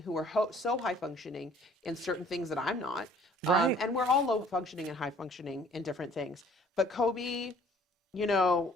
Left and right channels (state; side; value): normal; both; correlation 0.56